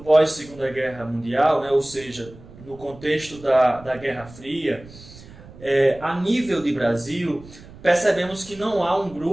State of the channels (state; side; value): noise; right; rumble, 19 dB below the sound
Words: Guerra Mundial, ou seja, no contexto da Guerra Fria, a nível de Brasil, percebemos que não há um